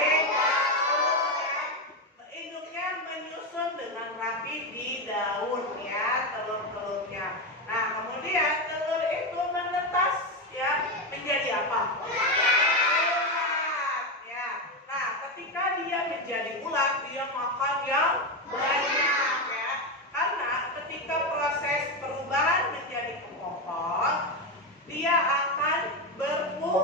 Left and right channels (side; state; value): both; normal; correlation 0.12